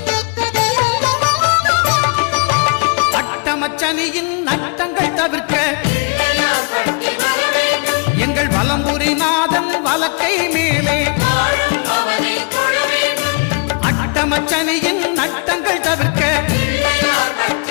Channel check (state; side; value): quieter; right; 36.4 dB